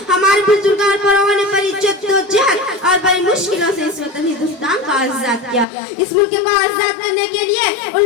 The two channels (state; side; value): drops out; right; at 5.7 s